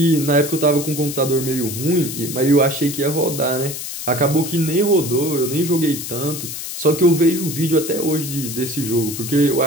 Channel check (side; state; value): left; noise; hiss, 7 dB below the sound